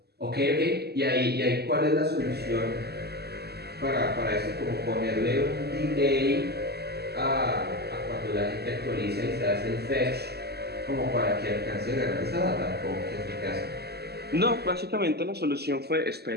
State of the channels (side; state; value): left; late; 0.47 ms